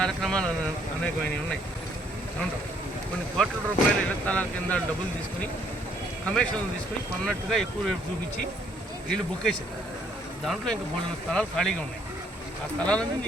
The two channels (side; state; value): both; normal; correlation 0.66